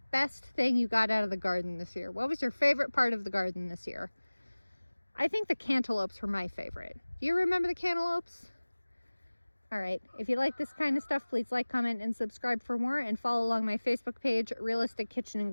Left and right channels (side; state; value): both; inverted; correlation -1.00